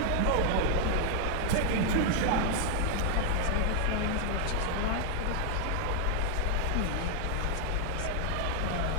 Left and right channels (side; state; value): both; different; correlation 0.00